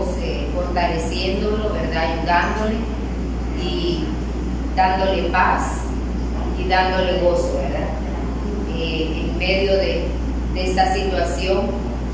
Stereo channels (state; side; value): identical; both; correlation 1.00